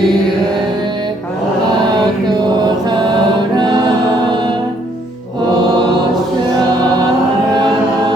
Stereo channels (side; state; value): both; normal; correlation 0.67